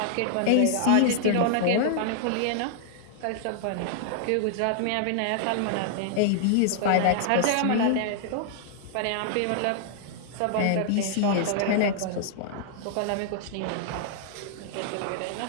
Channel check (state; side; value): different; both; correlation -0.01